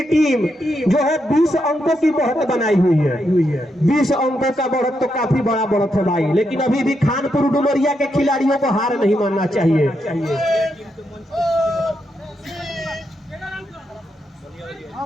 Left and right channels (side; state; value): both; normal; correlation 0.82